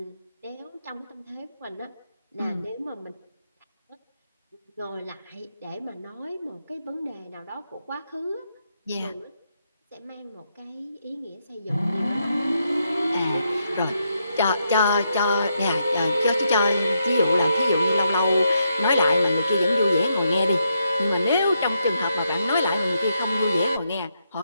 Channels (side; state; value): both; inverted; correlation -0.80